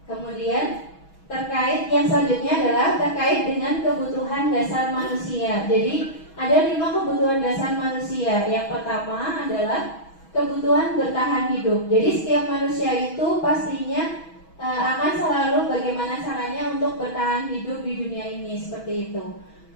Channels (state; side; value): late; right; 6.2 ms